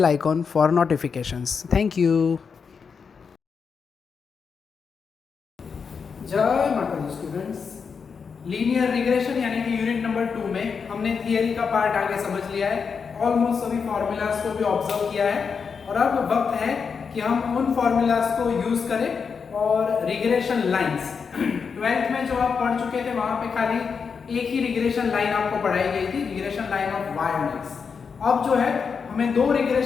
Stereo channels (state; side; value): quieter; right; 5.8 dB